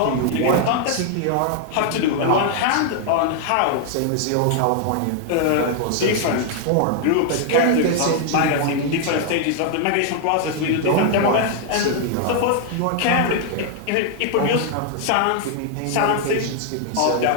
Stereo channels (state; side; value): different; both; correlation 0.00